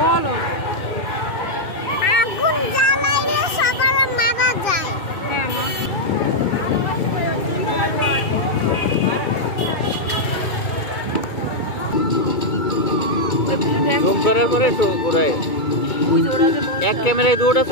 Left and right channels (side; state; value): right; late; 2.2 ms